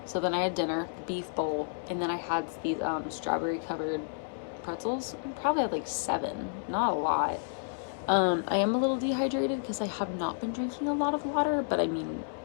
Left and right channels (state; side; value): silent; right; digital silence